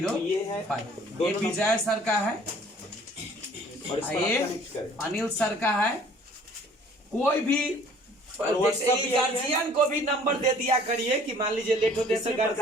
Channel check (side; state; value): both; normal; correlation 0.54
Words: है, ये विजय सर का है, और इस पर ये आप कनेक्ट करें। अनिल सर का है। कोई भी WhatsApp भी गार्जियन को भी नंबर दे दिया करिए कि मान लीजिए लेट होते तो